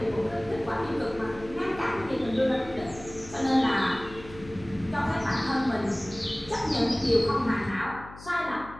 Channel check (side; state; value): left; noise; hum, 17 dB below the sound